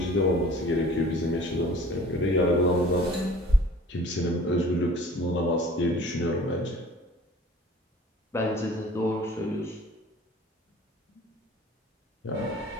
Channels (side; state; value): both; normal; correlation 0.47